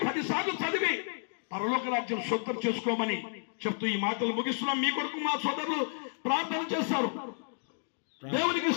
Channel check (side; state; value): right; silent; digital silence